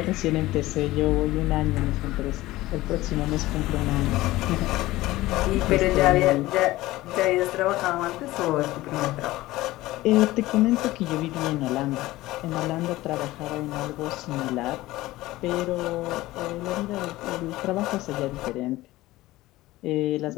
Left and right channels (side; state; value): right; quieter; 17.7 dB